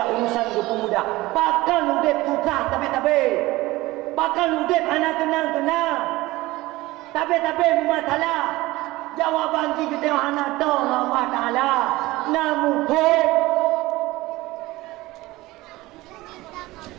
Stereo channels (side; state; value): left; quieter; 19.3 dB